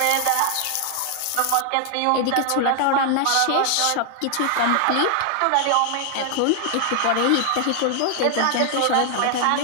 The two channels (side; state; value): both; different; correlation 0.00